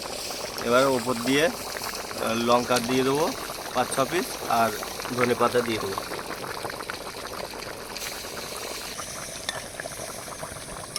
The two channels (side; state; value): both; identical; correlation 1.00